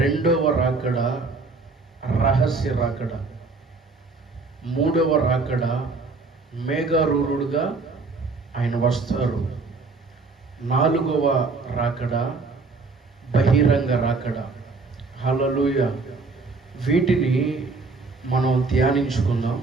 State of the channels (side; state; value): left; quieter; 4.0 dB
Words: రాకడ రహస్య రాకడ, మూడవ రాకడ మేఘారూఢుడుగా ఆయన వస్తారు, నాలుగవ రాకడ బహిరంగ రాకడ. హల్లెలూయా. వీటిని మనం ధ్యానించుకుందాం.